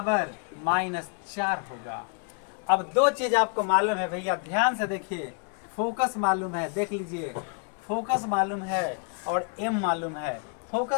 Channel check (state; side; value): quieter; right; 39.3 dB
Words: -4 होगा। अब दो चीज आपको मालूम है भैया, ध्यान से देखिए, फोकस मालूम है, देख लीजिए, फोकस मालूम है और m मालूम है,